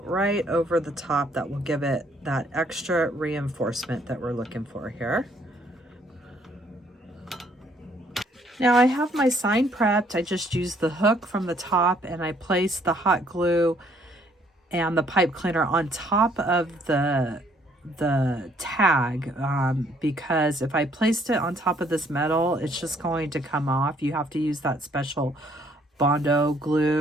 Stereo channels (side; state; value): both; normal; correlation 0.65